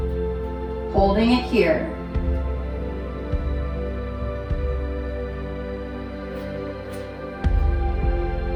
Holding it here.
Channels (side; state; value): both; identical; correlation 1.00